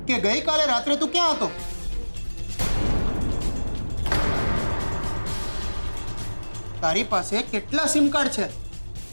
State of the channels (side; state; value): both; inverted; correlation -1.00